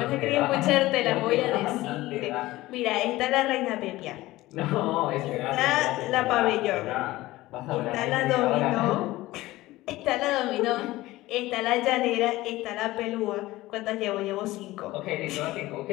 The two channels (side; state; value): right; quieter; 17.8 dB